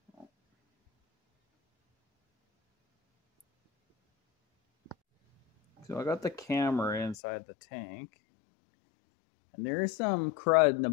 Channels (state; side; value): drops out; right; at 7.2 s